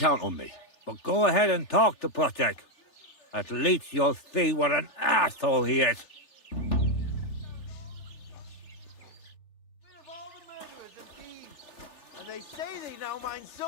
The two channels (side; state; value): right; late; 3.4 ms